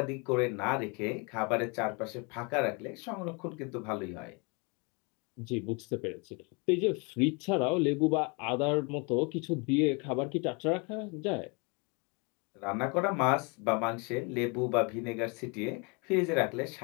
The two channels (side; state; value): right; quieter; 31.6 dB